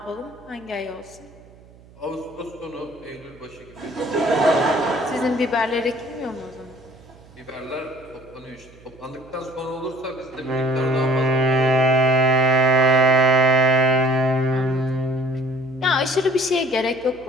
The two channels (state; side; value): noise; right; hum, 24 dB below the sound